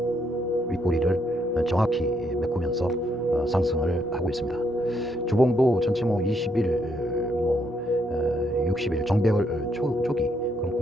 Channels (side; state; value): both; normal; correlation 0.74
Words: 정확히 메꾸면서 상승을 하고 있습니다. 주봉도 전체 20일, 60일 정배열 초기 그런